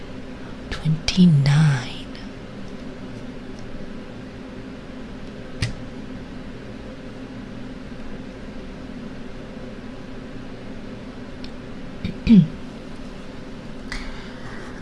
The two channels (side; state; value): both; identical; correlation 1.00